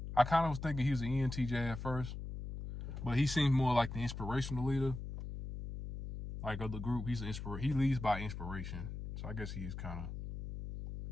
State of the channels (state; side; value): noise; left; hum, 7 dB below the sound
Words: I kind of was thinking he was an ENTJ at first, but he seems more like the inspirational leader, like of the group. He leads by inspiration. So I guess he is kind of.